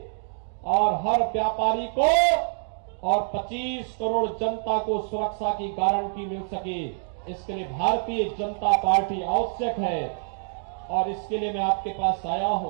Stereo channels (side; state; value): left; silent; digital silence